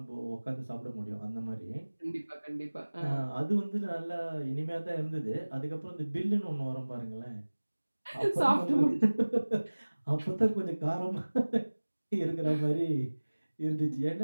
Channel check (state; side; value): inverted; both; correlation -1.00